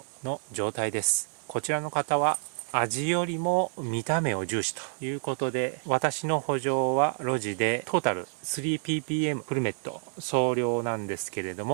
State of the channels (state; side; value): silent; left; 59 dB below the other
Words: の状態です。こちらの方は味よりも見た目を重視ということで、私の補助はロジでトータル 3ppm フルメット総量なんですけれど